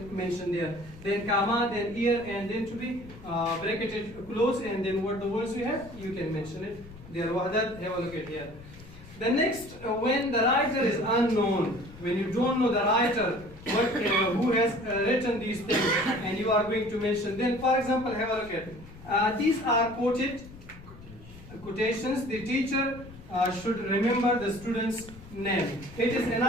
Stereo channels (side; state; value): left; noise; rumble, 18 dB below the sound